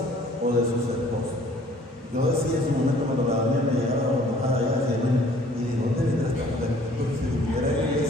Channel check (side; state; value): both; normal; correlation 0.56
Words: o de sus esposos. Yo decía en su momento cuando la Daniela me llegaba a allá hacia él, y digo, ¿dónde vendrá esta mujer? Porque si estuviera en la